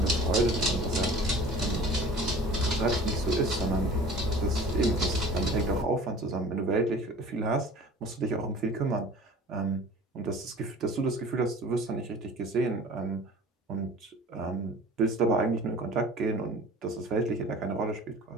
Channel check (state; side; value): normal; both; correlation 0.43